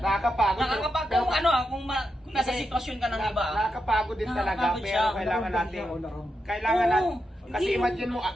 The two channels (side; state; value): both; normal; correlation 0.86